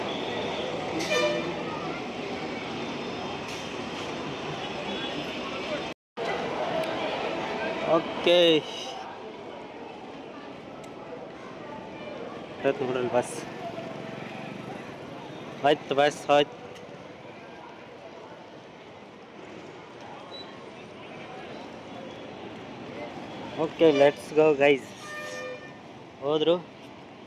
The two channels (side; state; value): both; identical; correlation 1.00